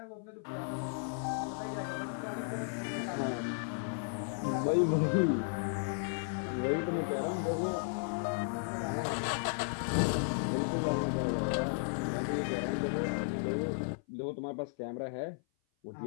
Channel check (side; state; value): right; silent; 55 dB below the other